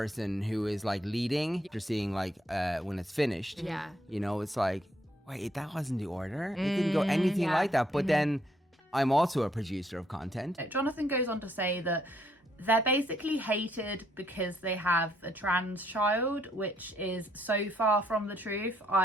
who is like leading. You're seeing like when it's finished, Yeah. you know, it's like, wait, that wasn't the order. It didn't go anything like that. But then I'm also a producer of content. Jonathan goes on to say that they're basically hated because they have a trans child, which is so far from the truth.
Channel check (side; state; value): both; normal; correlation 0.71